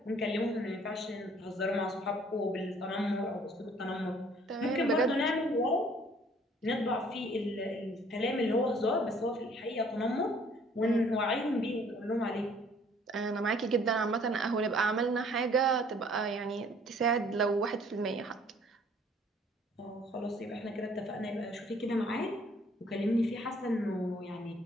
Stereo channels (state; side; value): normal; both; correlation 0.58